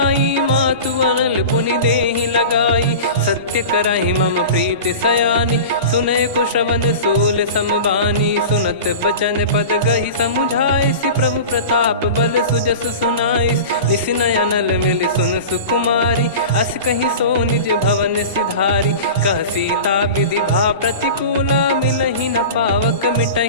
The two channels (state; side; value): inverted; both; correlation -0.33